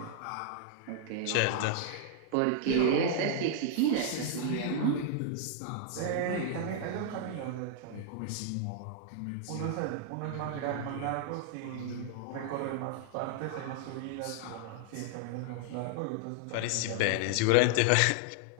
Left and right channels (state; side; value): different; both; correlation -0.01